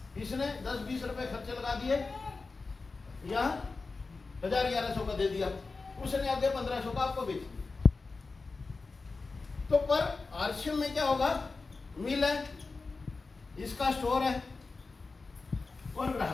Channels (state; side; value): quieter; right; 4.0 dB